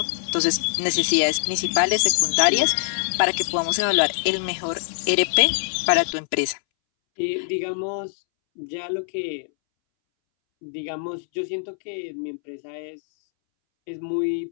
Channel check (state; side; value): silent; right; 63 dB below the other